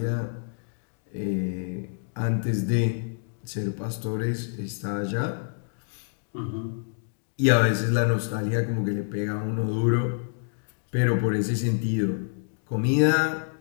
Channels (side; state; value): right; silent; digital silence